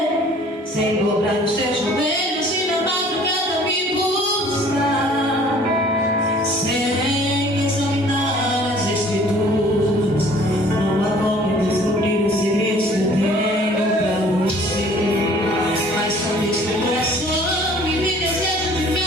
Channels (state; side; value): normal; both; correlation 0.53